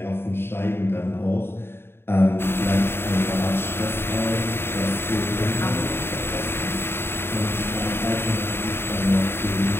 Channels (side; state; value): right; late; 0.11 ms